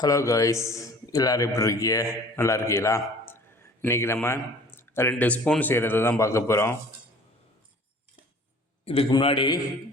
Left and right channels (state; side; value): normal; both; correlation 0.48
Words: காய்ஸ், எல்லோரும் எப்படி இருக்கீங்க? நல்லா இருக்கீங்களா? இன்றைக்கி நம்ம 2 ஸ்பூன் செய்கிறது தான் பார்க்க போகிறோம். இதுக்கு முன்னாடி